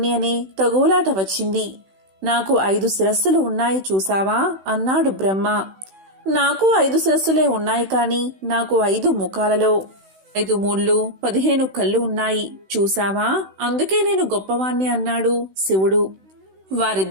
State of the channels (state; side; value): late; left; 16 ms